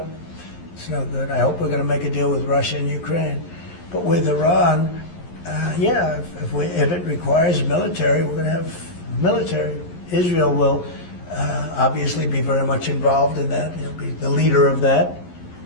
it's no good. I hope we're going to make a deal with Russia and Ukraine. But with Iran, yeah, if it requires military, we're going to have military. Israel will obviously be very much involved in that. He'll be the leader of that.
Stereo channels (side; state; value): right; late; 11 ms